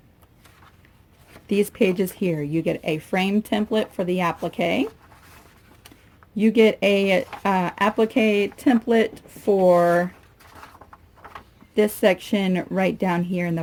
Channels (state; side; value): identical; both; correlation 1.00